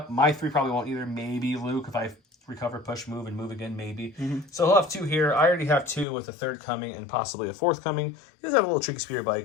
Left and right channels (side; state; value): right; drops out; at 6.1 s